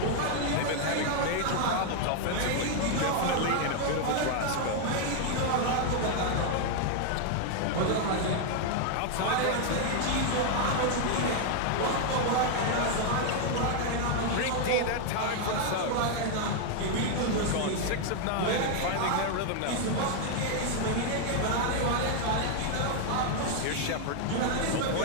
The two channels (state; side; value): different; both; correlation 0.00